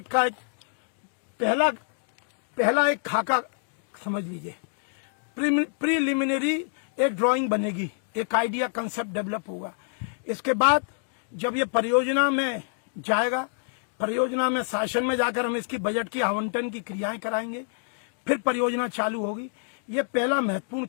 का एक पहला एक खाका समझ लीजिए, प्रीलिमिनरी एक ड्राइंग बनेगी, एक आइडिया कंसेप्ट डेवलप होगा। इसके बाद जब ये परियोजना में जाएगा, परियोजना में शासन में जाकर हम इसकी बजट की आवंटन की क्रियाएं कराएंगे, फिर परियोजना चालू होगी। ये पहला महत्वपूर्ण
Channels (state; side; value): silent; right; digital silence